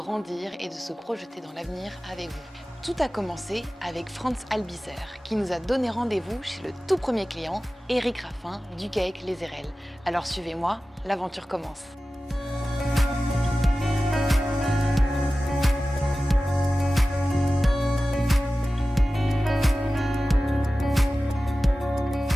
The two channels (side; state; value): both; normal; correlation 0.95